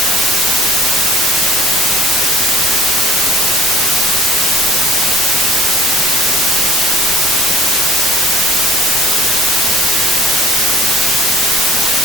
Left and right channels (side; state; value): both; normal; correlation 0.53